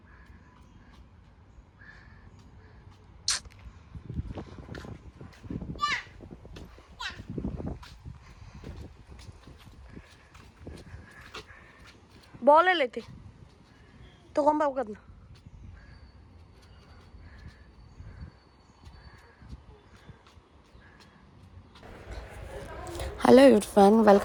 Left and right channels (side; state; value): both; identical; correlation 1.00